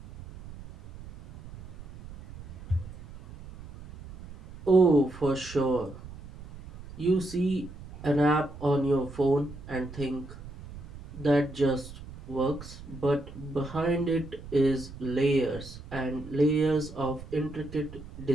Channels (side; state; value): right; noise; rumble, 15 dB below the sound